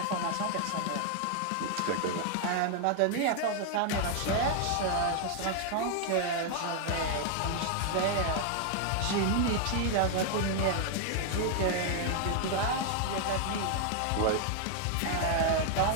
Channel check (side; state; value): both; different; correlation 0.00